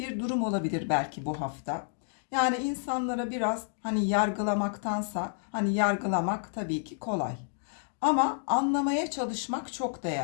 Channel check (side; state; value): right; silent; digital silence